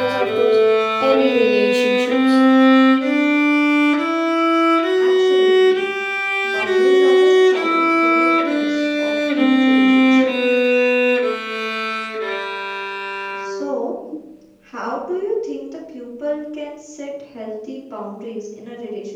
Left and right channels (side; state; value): both; identical; correlation 1.00